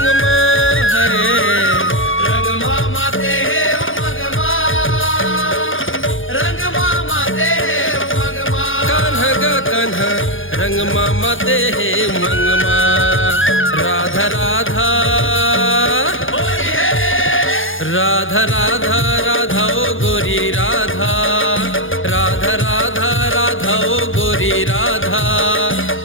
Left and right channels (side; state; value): right; late; 0.58 ms